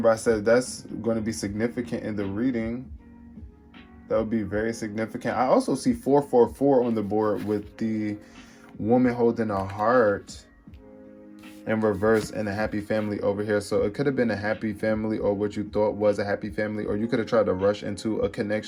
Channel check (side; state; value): both; identical; correlation 1.00